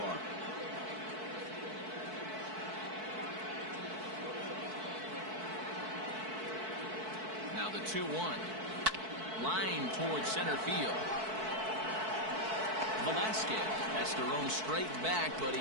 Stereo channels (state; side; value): late; left; 4.6 ms